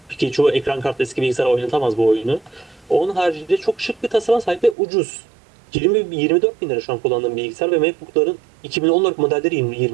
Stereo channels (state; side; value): drops out; left; at 4.8 s